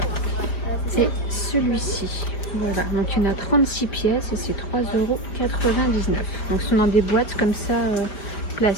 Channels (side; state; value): right; late; 5.2 ms